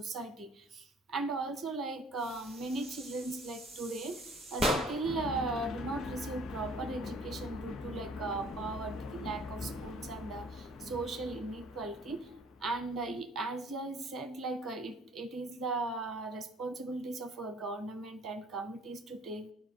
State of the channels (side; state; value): both; normal; correlation 0.54